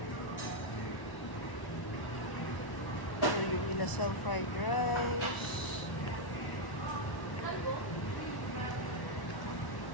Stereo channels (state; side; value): late; right; 1.0 ms